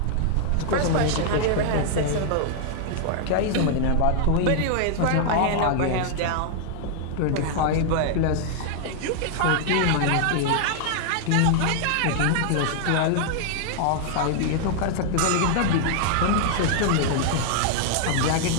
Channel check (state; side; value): different; both; correlation -0.01